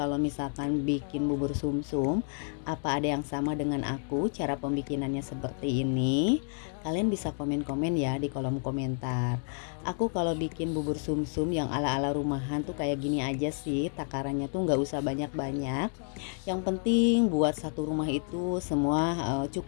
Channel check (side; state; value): right; silent; 58 dB below the other